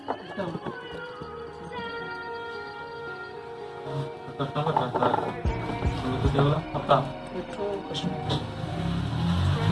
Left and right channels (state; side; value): identical; both; correlation 1.00